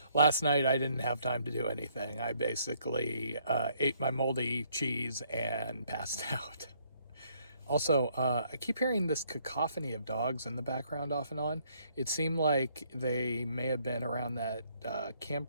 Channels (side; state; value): both; inverted; correlation -0.68